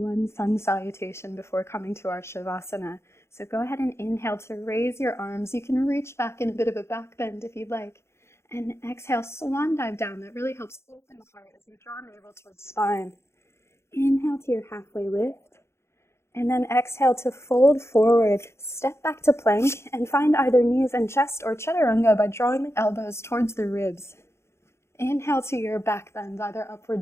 sun salutation before coming to our Shavasana. So go ahead and inhale to raise your arms. You can reach back in a bit of a back bend if you'd like. And exhale, swan dive down. That really helps open the heart as you draw navel towards spine. Inhale to your halfway lift. And then exhale to fold forward, step back to plank, and find either knees and chest or chaturanga by drawing the elbows towards the ribs. Inhale to your back bend, either upward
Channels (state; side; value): late; right; 0.13 ms